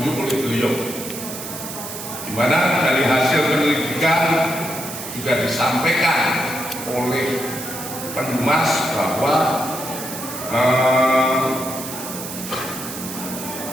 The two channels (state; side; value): noise; right; hiss, 9 dB below the sound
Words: oleh beliau, di mana dari hasil penyelidikan juga disampaikan oleh Pendumas bahwa